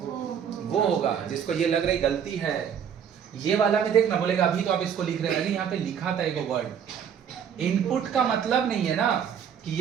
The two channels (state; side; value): quieter; left; 8.1 dB